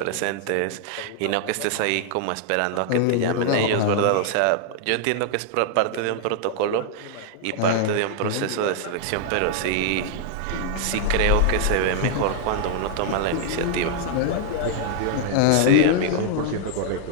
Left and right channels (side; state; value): both; different; correlation 0.00